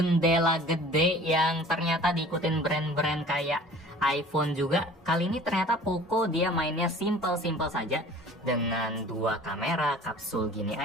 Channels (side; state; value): both; normal; correlation 0.46